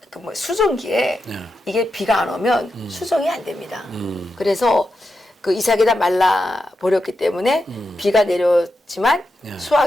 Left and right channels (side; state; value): both; normal; correlation 0.87